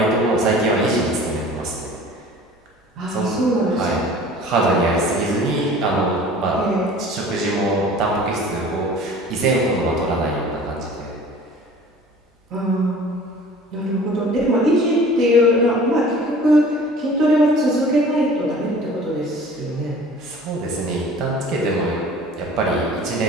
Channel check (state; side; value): normal; both; correlation 0.45